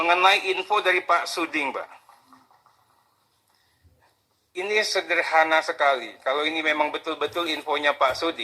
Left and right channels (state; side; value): identical; both; correlation 1.00